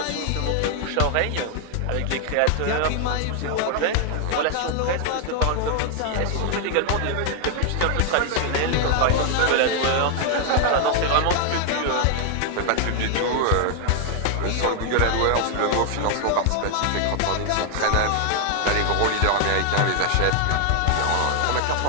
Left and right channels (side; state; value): both; different; correlation 0.00